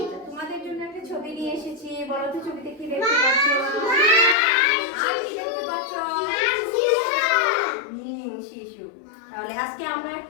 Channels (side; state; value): right; drops out; at 4.4 s